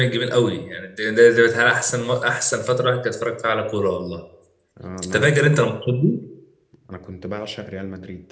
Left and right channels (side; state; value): both; identical; correlation 1.00